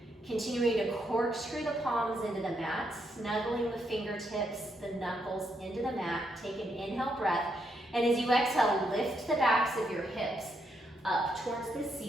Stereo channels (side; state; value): both; normal; correlation 0.78